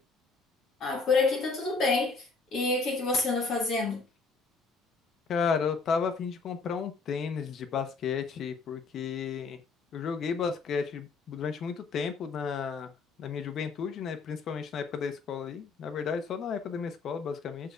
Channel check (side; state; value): right; quieter; 4.5 dB